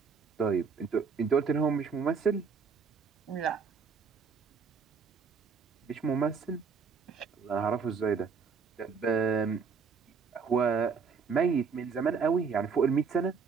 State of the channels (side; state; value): left; quieter; 5.6 dB